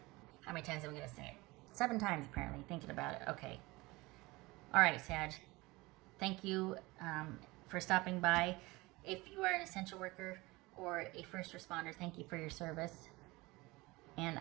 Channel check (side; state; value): left; quieter; 22.1 dB